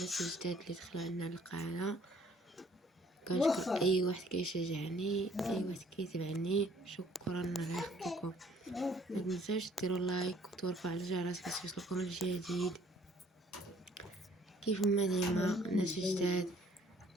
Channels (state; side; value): normal; both; correlation 0.60